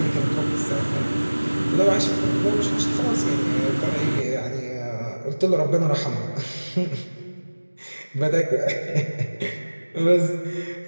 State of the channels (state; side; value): inverted; both; correlation -1.00